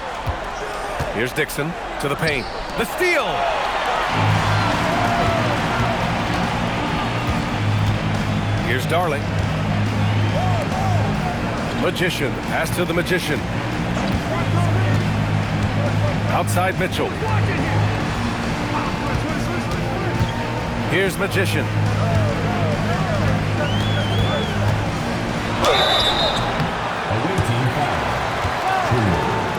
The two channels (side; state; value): both; identical; correlation 1.00